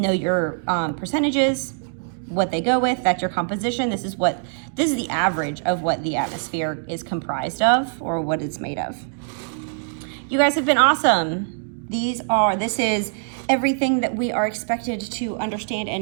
your percentages, what they go with. That's your composition. This is the average of what the atmosphere is comprised of, or what it's made of. You guys have been awesome. This is everything that we are expected to understand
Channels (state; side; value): silent; left; digital silence